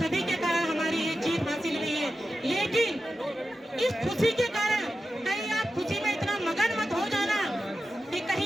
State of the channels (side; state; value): both; normal; correlation 0.92